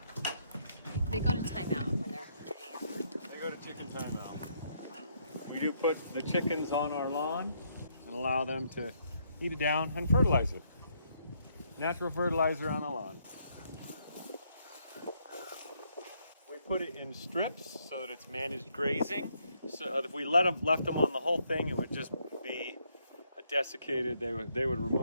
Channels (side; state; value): both; inverted; correlation -0.73